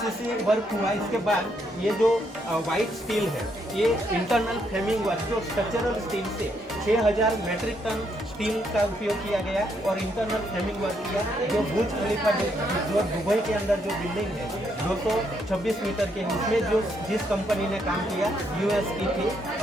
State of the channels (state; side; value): normal; both; correlation 0.75